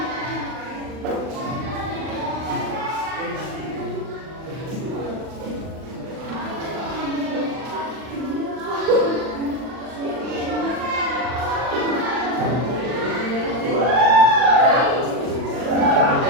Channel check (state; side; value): late; left; 39 ms